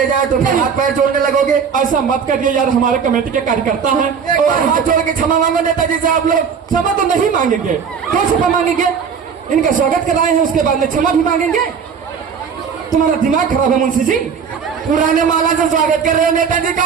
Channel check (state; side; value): quieter; left; 6.6 dB